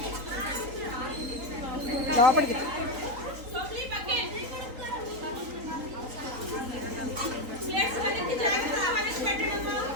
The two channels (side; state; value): left; late; 3.9 ms